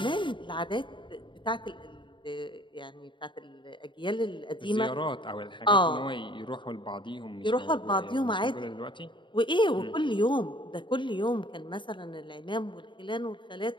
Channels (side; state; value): right; late; 0.23 ms